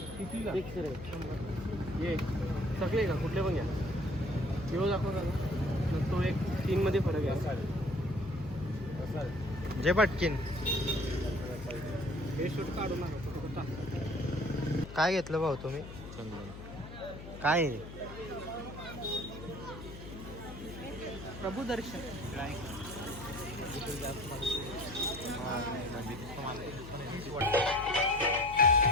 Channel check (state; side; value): noise; left; hum, 12 dB below the sound